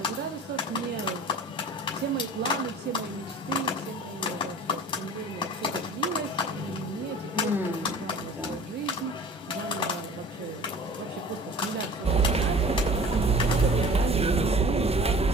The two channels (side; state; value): both; normal; correlation 0.44